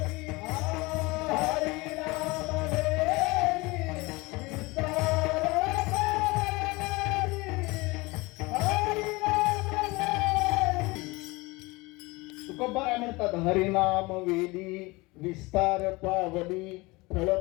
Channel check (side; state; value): right; quieter; 23.6 dB